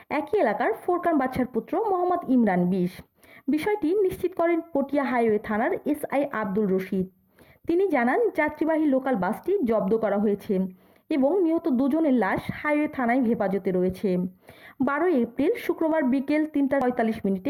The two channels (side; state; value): both; identical; correlation 1.00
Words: একই এলাকার ফোরকান বাদশার পুত্র মোহাম্মদ ইমরান 20। বিষয়টি নিশ্চিত করেন পটিয়া হাইওয়ে থানার এসআই আব্দুল রশিদ। তিনি জানান, যাত্রীবাহী লোকাল বাসটি জব্দ করা হয়েছে এবং নিহত দুজনের লাশ হাইওয়ে থানায় হেফাজতে রয়েছে। 12 এপ্রিল শুক্রবার বিকেল